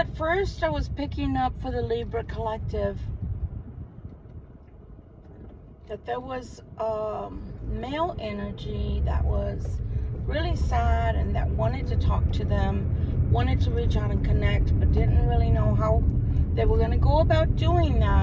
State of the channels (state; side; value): identical; both; correlation 1.00